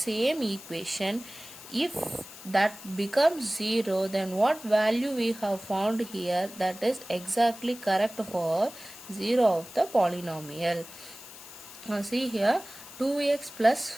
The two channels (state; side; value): noise; left; hiss, 16 dB below the sound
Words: equation. If that becomes 0, then what value we have found here, that is exactly correct for 0 of the polynomial. Now see here, 2x plus